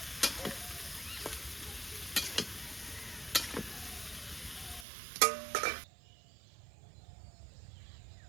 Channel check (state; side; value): drops out; left; at 4.9 s